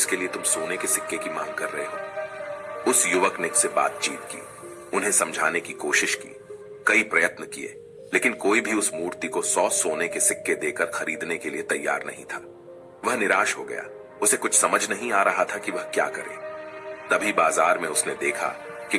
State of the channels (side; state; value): both; identical; correlation 1.00